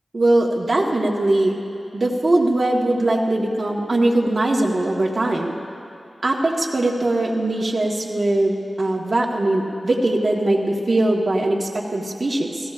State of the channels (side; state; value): both; normal; correlation 0.97